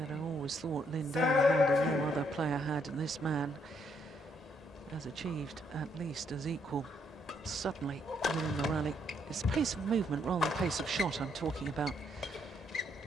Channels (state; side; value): normal; both; correlation 0.72